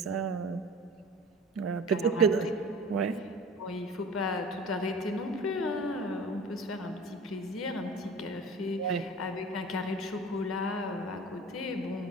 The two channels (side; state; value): both; normal; correlation 0.40